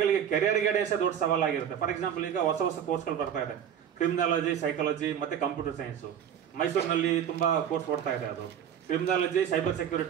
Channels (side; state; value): left; quieter; 9.1 dB